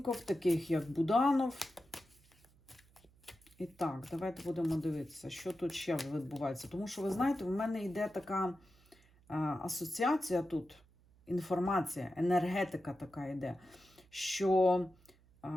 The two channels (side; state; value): right; noise; hum, 29 dB below the sound